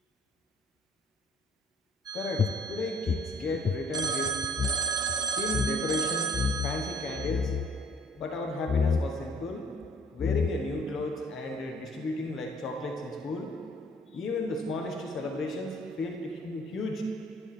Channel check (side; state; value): both; normal; correlation 0.58